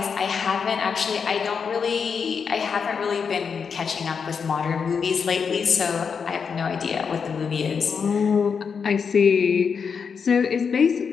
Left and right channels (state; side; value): quieter; right; 6.1 dB